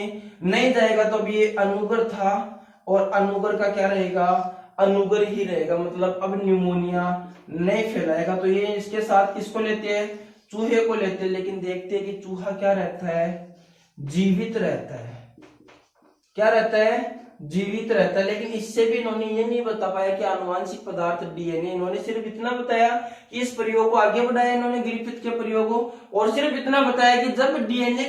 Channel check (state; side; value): identical; both; correlation 1.00